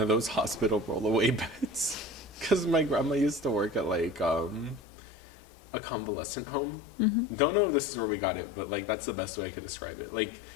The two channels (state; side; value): drops out; right; at 4.8 s